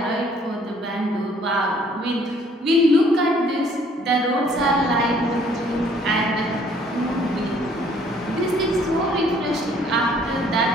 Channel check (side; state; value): both; normal; correlation 0.60